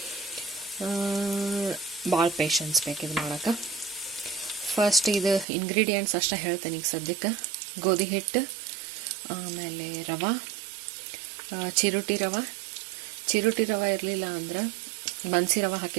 ಭಾಳ ಪೇಷನ್ಸ್ ಬೇಕಿದು ಮಾಡೋಕೆ. ಫಸ್ಟ್ ಇದು ಇಂಗ್ರೀಡಿಯೆಂಟ್ಸ್ ಅಷ್ಟೇ ಹೇಳ್ತೇನೆ ಈಗ ಸದ್ಯಕ್ಕೆ. ಗೋಧಿ ಹಿಟ್ಟು, ಆಮೇಲೆ ರವೆ, ಚಿರೋಟಿ ರವೆ ಇರಲಿಲ್ಲ ಅಂದ್ರೆ ಬನ್ಸಿ ರವೆ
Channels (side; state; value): left; drops out; at 5.5 s